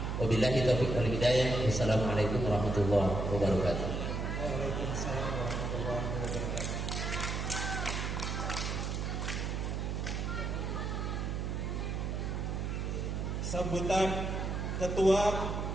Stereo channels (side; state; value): right; noise; hum, 1 dB below the sound